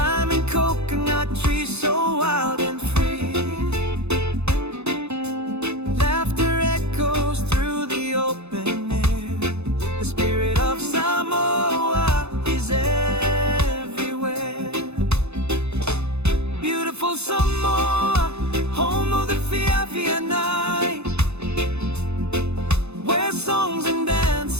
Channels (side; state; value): left; late; 0.80 ms